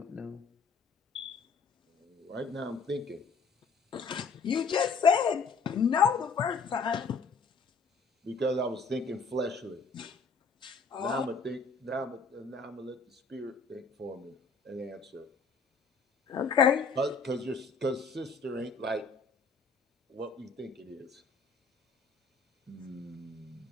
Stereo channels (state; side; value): quieter; right; 4.7 dB